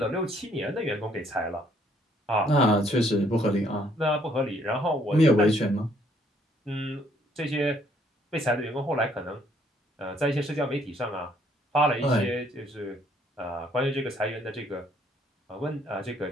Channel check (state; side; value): normal; both; correlation 0.66